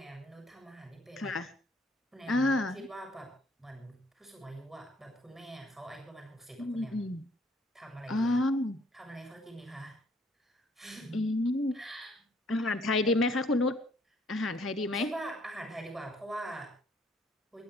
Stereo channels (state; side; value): normal; both; correlation 0.63